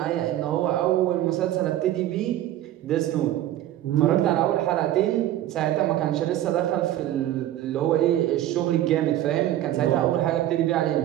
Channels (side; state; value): left; quieter; 13.2 dB